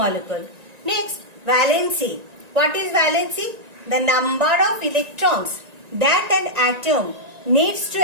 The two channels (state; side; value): late; left; 1.9 ms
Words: Next, valency. What is valency? The number of electrons that an atom needs to